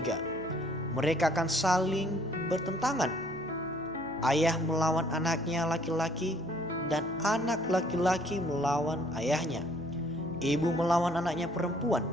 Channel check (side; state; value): right; noise; hum, 21 dB below the sound